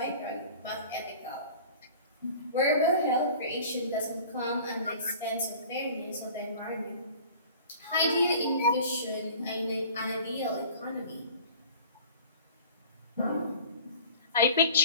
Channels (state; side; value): inverted; both; correlation -0.44